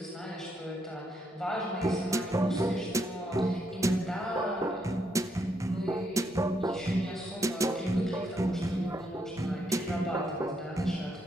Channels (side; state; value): both; normal; correlation 0.76